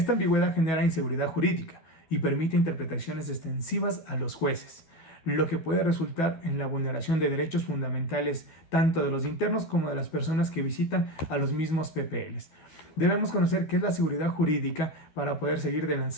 ambigüedad genera inseguridad jurídica y permite interpretaciones extensivas a los jueces, lo que puede resultar en la vulneración de derechos fundamentales tanto de los internos como de las personas que visitan a los mismos PPLs. Debemos conocer qué es la seguridad jurídica para poder seguir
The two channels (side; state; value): right; late; 12 ms